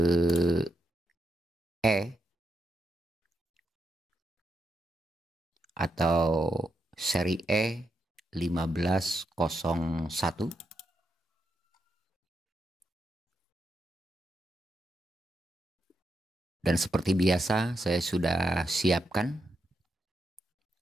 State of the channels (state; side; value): normal; both; correlation 0.83